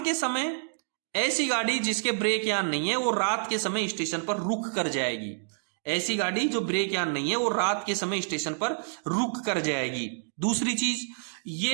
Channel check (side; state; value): left; silent; digital silence